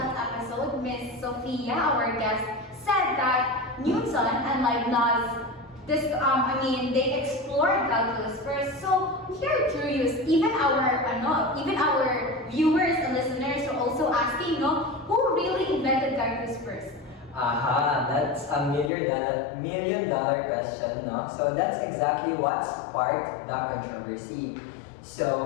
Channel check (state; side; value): drops out; right; at 18.9 s